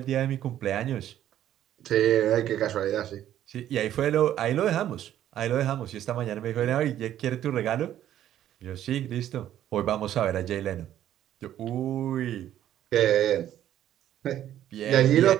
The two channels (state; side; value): quieter; left; 11.7 dB